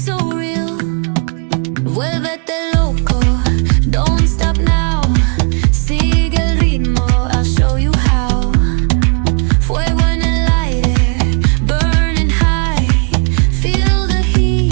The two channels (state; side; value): quieter; left; 38.6 dB